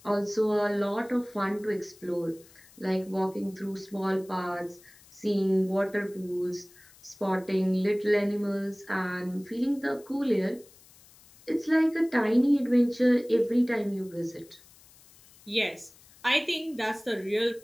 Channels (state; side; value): noise; left; hiss, 25 dB below the sound